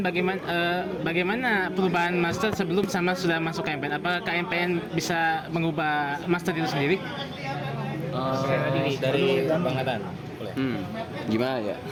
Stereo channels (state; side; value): identical; both; correlation 1.00